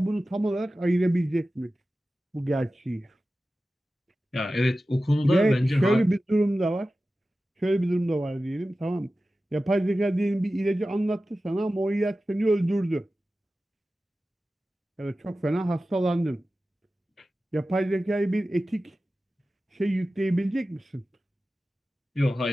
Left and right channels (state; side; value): normal; both; correlation 0.95